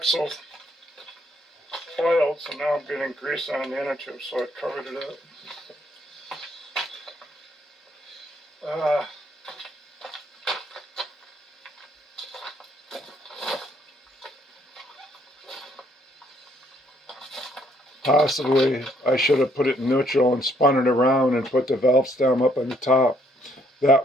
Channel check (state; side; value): normal; both; correlation 0.67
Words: oiled, so now I'm getting grease on the innertube, so I covered it up. possibly I should have put it in neutral and spun it around and put the valve stem up on the top.